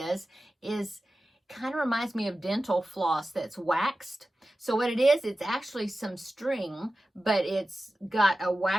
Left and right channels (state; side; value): normal; both; correlation 0.94